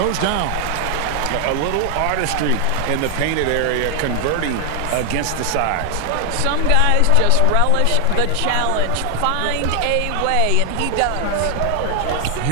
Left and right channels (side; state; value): both; different; correlation 0.00